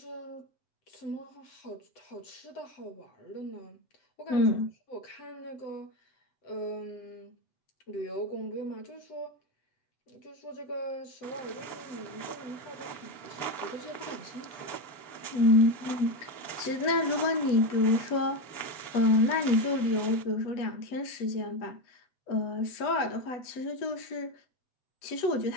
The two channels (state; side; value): late; right; 8.1 ms